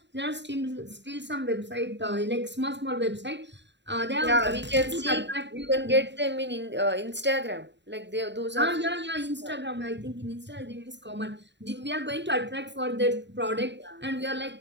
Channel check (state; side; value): late; left; 0.52 ms